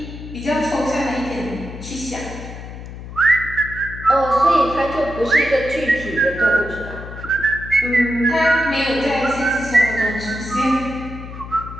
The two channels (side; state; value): left; noise; hum, 11 dB below the sound